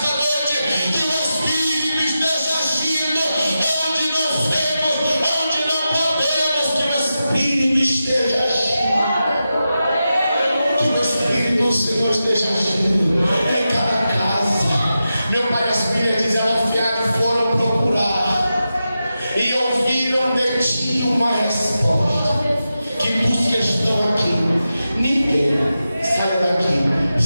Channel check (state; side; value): inverted; both; correlation -0.91